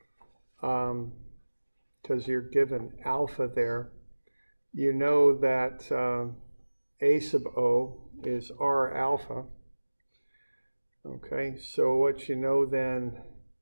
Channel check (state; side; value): inverted; both; correlation -1.00